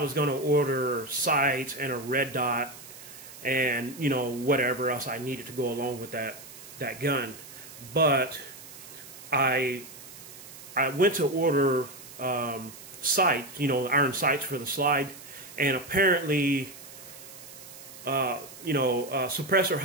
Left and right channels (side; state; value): right; noise; hiss, 16 dB below the sound